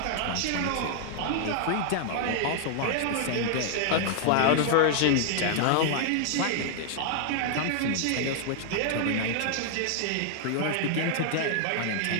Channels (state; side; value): different; both; correlation 0.00